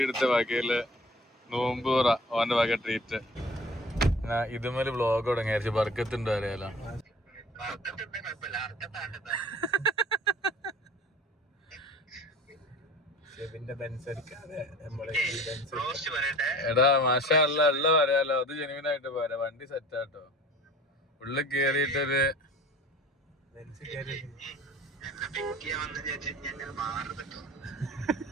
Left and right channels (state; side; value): normal; both; correlation 0.44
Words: എടുത്ത വകയില് നോമ്പ് തുറ ഓന്റെ വക ട്രീറ്റ്. ഇതുമേല് വ്ളോഗ് തുടങ്ങിയായിരിച്ചു. ബർക്കത്തുണ്ടോ അറിയാലോ. എടാ മാഷാ അല്ല ഉള്ള പറയാലോ. അത് ജെനുവിനായിട്ട് പോരാ. വണ്ടി സെറ്റാട്ടോ. ഉള്ളിൽ കേറിയിട്ടൊരു